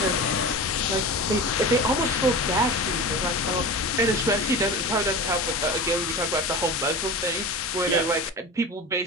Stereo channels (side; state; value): both; normal; correlation 0.31